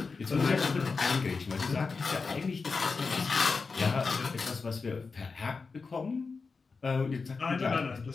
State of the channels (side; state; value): right; quieter; 4.5 dB